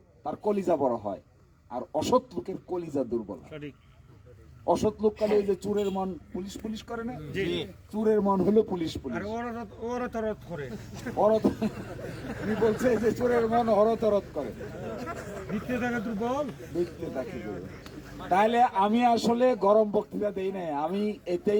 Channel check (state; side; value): identical; both; correlation 1.00